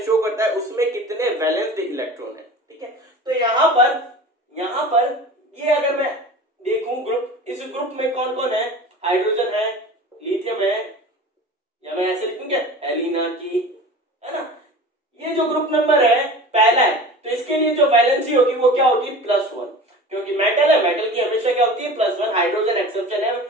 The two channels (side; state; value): both; normal; correlation 0.37